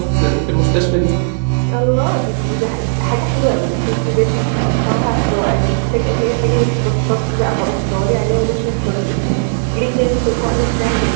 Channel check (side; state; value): left; silent; 64 dB below the other